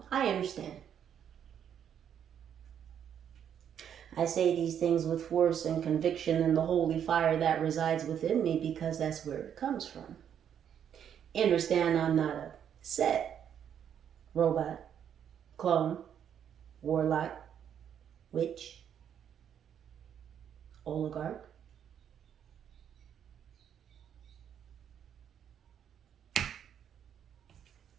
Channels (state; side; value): quieter; left; 8.9 dB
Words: I understand. I say these things with force and conviction and the holy fire that resides within me because that's where it comes from. Understand I'm not a set. robot, clone, warlock, witch, oligarch.